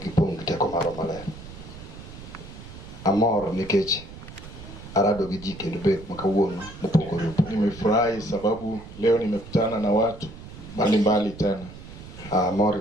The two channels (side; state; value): right; noise; rumble, 15 dB below the sound